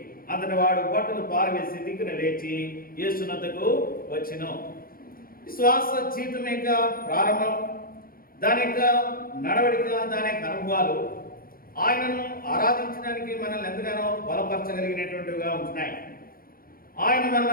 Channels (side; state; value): right; late; 0.42 ms